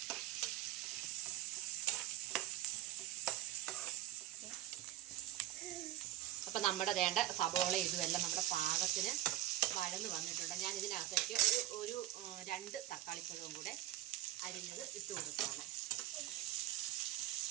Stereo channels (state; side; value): quieter; left; 13.9 dB